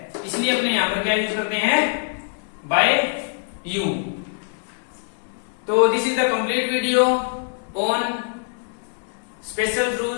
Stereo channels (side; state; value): right; silent; digital silence